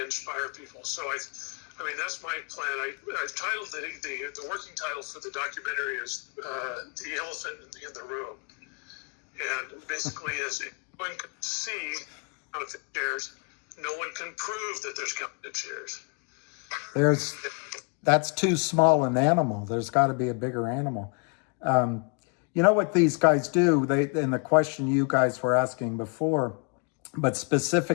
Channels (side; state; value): right; quieter; 36.8 dB